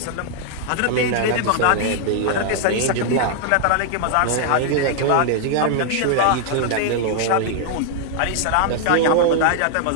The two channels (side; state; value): both; different; correlation -0.01